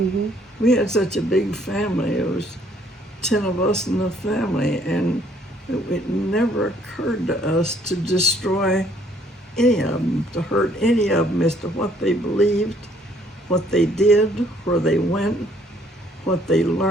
We had such a big family. It was 10 of us in the family, and it never occurred to us to destroy any of them, to hurt any of them as to what they believed, what they did, where they went, what they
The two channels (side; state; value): both; normal; correlation 0.63